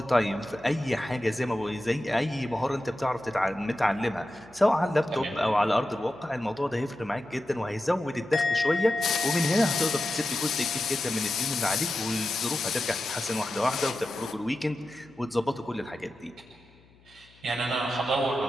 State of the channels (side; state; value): left; noise; hum, 29 dB below the sound